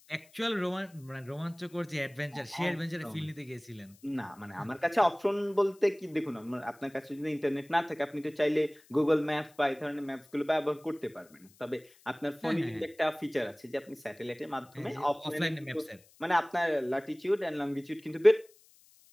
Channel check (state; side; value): noise; left; hiss, 28 dB below the sound